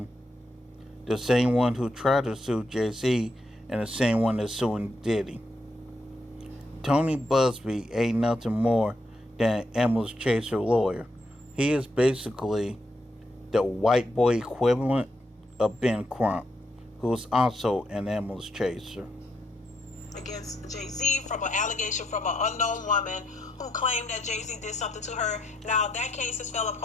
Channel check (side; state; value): both; normal; correlation 0.79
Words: the same one who tried to sue Jay-Z, and the same one that's suing Diddy. Tony Busby ain't nothing more than Emma's Chaser lawyer. He is basically the white boy equivalent of Ben Crump, who's also an Emma's Chaser. Against Jay-Z from an allegation from an unknown woman who claimed that Jay-Z did something to her. Now, that case has fell